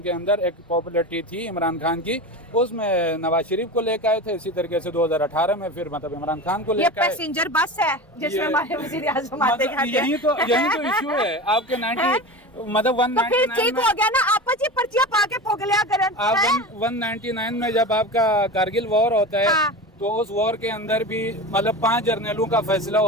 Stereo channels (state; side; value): normal; both; correlation 0.28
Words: के अंदर एक पॉपुलरिटी थी इमरान खान की, उसमें नवाज शरीफ को लेकर आए थे। इसी तरीके से 2018 में फिर मतलब इमरान खान को लेकर आए। पैसेंजर बस है जिसमें हमारे वज़ीर आज़म आते हैं। यही तो इशू है आपके 90 मतलब 199 तो ठीक हो गया ना, आपस ये पर्चियां पाके पोगलिया करन। आप 199 में जब आपका कारगिल वॉर होता है, तो उस वॉर के अंदर भी मतलब 5 जर्नलों का फैसला